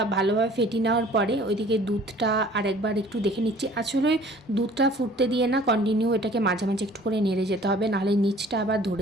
ভালোভাবে ফেটিয়ে নেওয়ার পরে ওইদিকে দুধটা আরেকবার একটু দেখে নিচ্ছি। আসলে দুধটা ফুটতে দিয়ে না কন্টিনিউ এটাকে মাঝে মাঝে একটু করে নেড়ে যেতে হবে, নাহলে নিচটা আবার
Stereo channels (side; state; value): both; normal; correlation 0.52